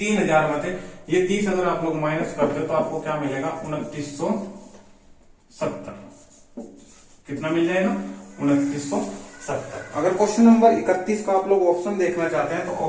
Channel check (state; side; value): identical; both; correlation 1.00